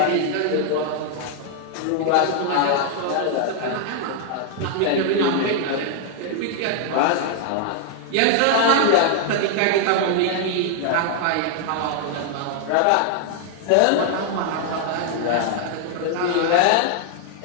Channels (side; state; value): both; different; correlation 0.00